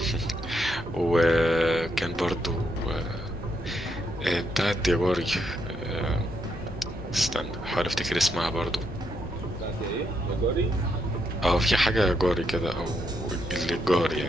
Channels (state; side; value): normal; both; correlation 0.78